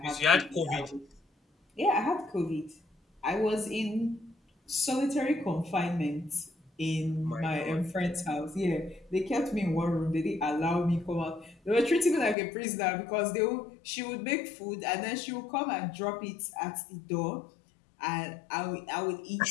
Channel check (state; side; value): drops out; right; at 12.4 s